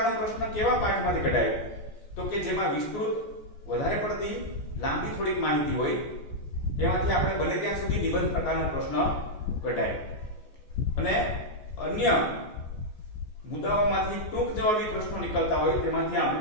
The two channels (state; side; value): late; right; 14 ms